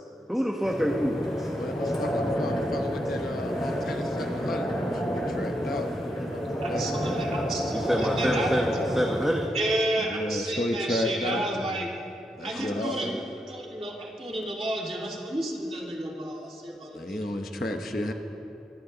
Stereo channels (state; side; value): normal; both; correlation 0.81